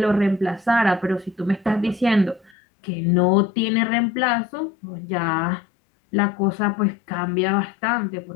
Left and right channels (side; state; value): right; drops out; at 2.5 s